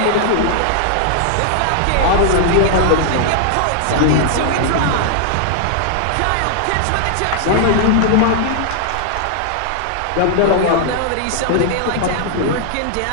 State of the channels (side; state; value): both; different; correlation 0.00